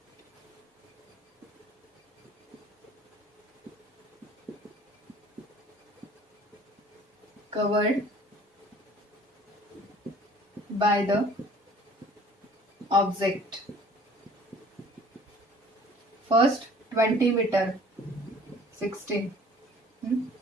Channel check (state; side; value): normal; both; correlation 0.52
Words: covered by the object. First 20 meter, 16